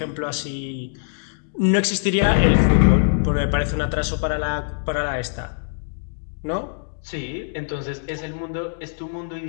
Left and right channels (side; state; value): right; silent; digital silence